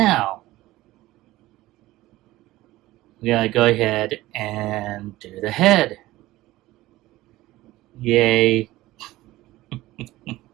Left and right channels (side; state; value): left; quieter; 17.2 dB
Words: we gotta go ahead and do the head. Yay.